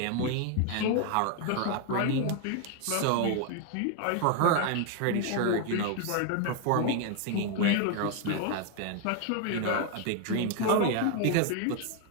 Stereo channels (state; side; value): different; both; correlation 0.01